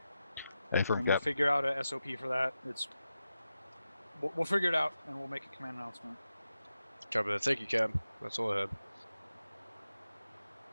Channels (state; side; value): inverted; both; correlation -0.90